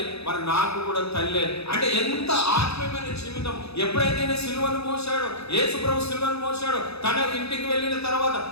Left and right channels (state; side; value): late; right; 0.79 ms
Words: మరి నాకు కూడా తల్లి. అంటే ఎంత ఆత్మీయమైన జీవితం. ఎప్పుడైతే నేను సిలువను మోసాడో యేసుప్రభు సిలువను మోసాడో తన ఇంటికి వెళ్ళిన తర్వాత